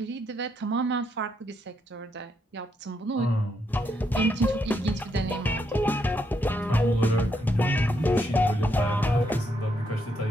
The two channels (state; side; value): normal; both; correlation 0.77